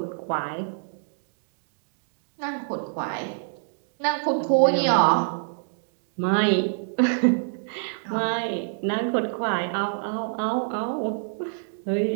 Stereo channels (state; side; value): silent; left; digital silence